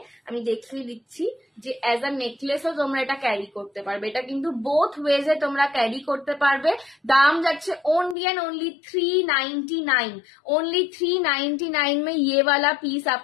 আমি দেখিয়ে দিচ্ছি যে অ্যাজ আ নেকলেসও তোমরা এটা ক্যারি করতে পারবে। এটা কিন্তু বোথ ওয়েজে তোমরা ক্যারি করতে পারবে। দাম যাচ্ছে ओनली एंड ओनली 399, ओनली 399 में ये वाला पीस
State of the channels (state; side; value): drops out; right; at 8.2 s